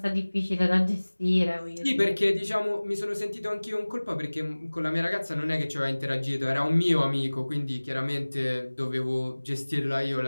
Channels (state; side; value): inverted; both; correlation -1.00